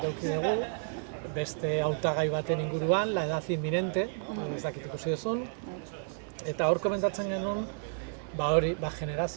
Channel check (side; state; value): left; silent; digital silence